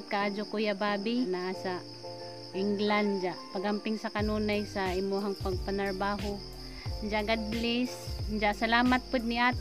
kaadyo Kuya Bobby naa sa England ja pagamping sa kanunay sa imuhang pagpanarbaho ja God bless ja salamat pud ni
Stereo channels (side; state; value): both; identical; correlation 1.00